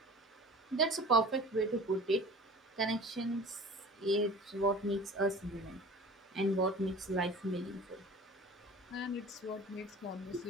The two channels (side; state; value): both; normal; correlation 0.41